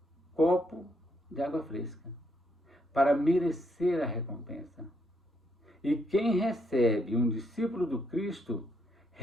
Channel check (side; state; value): both; normal; correlation 0.76